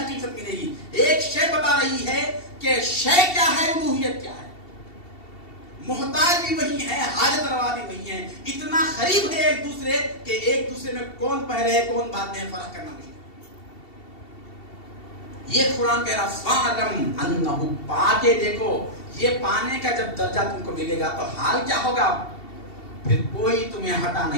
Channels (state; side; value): late; right; 2.7 ms